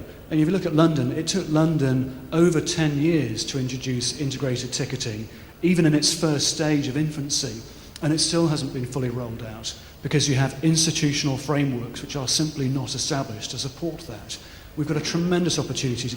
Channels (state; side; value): identical; both; correlation 1.00